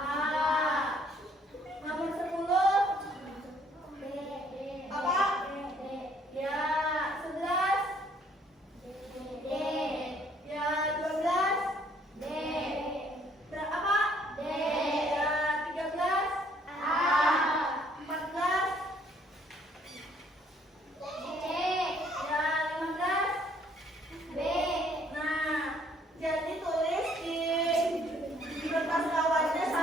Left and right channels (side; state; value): both; normal; correlation 0.63